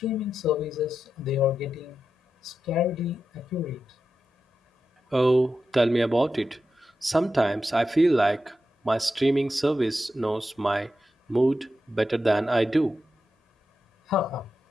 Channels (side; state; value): both; normal; correlation 0.89